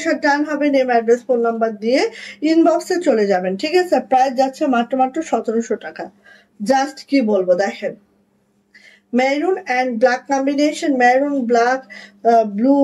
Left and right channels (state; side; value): identical; both; correlation 1.00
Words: ডান হবে, নেম অ্যাড্রেস ফোন নাম্বার দিয়ে ইনবক্সে চলে যাবেন। ঠিক আছে, প্রাইস যাচ্ছে মাত্র 1700 টাকা। জাস্ট কি বলবো, দেখেন maroon and black combination, maroon black blue,